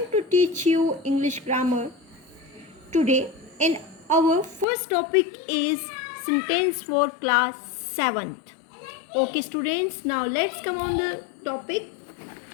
to teach you English grammar today. And our first topic is sentence for class 7th. Okay, students, now let's come on the topic.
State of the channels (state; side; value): drops out; right; at 4.7 s